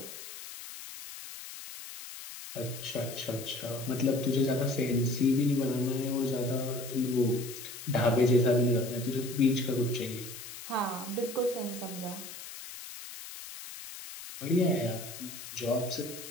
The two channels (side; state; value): left; noise; hiss, 12 dB below the sound